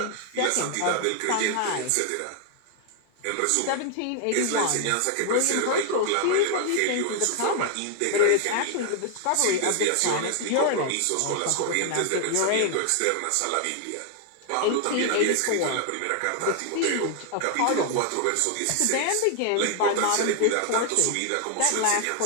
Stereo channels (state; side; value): different; both; correlation 0.00